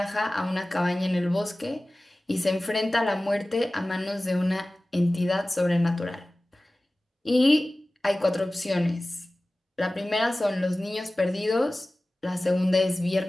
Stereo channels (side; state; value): both; normal; correlation 0.97